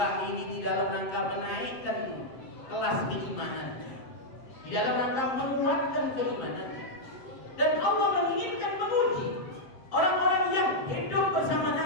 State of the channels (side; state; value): right; late; 7.7 ms